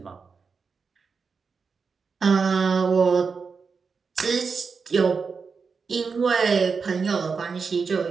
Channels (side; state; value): left; quieter; 5.2 dB